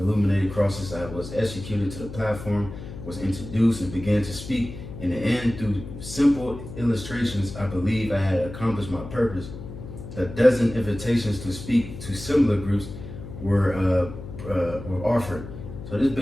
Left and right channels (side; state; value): left; noise; hum, 11 dB below the sound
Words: crosses. I was executed to the platform, was introduced, and began to speak. In the end, through simple illustrations, I believe I had accomplished my purpose. A dozen invitations to speak to similar groups were offered. So this